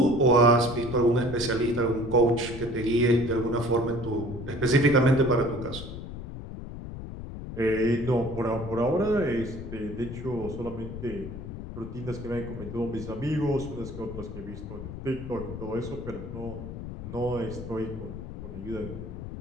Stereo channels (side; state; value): left; noise; rumble, 9 dB below the sound